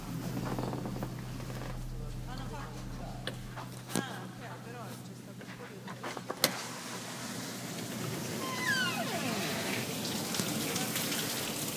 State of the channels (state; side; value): identical; both; correlation 1.00